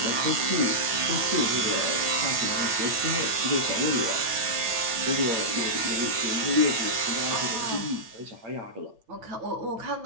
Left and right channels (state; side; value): late; left; 9.1 ms